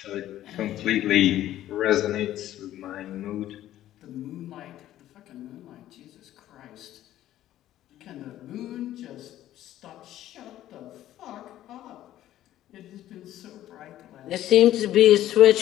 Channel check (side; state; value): right; quieter; 13.2 dB